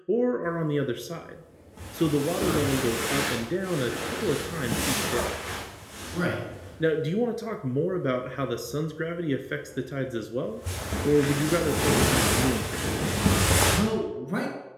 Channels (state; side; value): identical; both; correlation 1.00